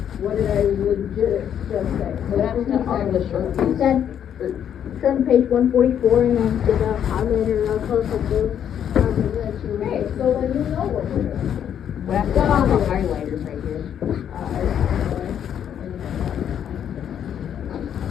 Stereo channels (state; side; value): quieter; right; 9.2 dB